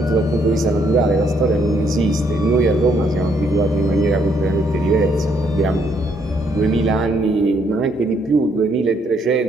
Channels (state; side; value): normal; both; correlation 0.71